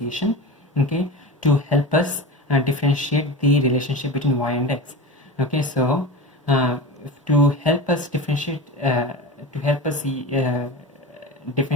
okay, to help us differentiate the relationship between y and x. Okay, so to help us differentiate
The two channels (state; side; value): normal; both; correlation 0.28